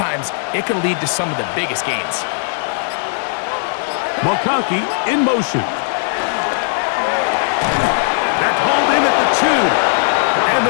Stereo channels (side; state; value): right; silent; digital silence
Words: it can lead to some of the biggest gains. McConkey in motion. That's hauled in at the 2. And